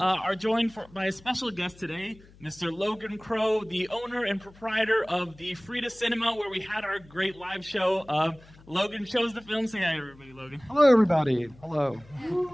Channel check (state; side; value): noise; left; hum, 24 dB below the sound